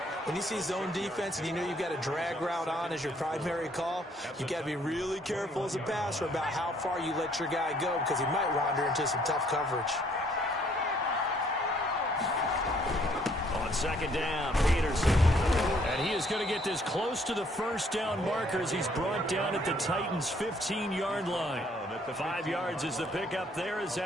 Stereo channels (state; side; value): normal; both; correlation 0.64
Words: When you see zone defense and you know you've got a drag route on as your primary call, you've got to be really careful as a passer about how far you let your guy go because he might wander into some tough coverage. On 2nd down, Peterson. And he is going to get this close to the 1st down marker as he's brought down at the Titans' 15-yard line. 5 yards is the pickup there as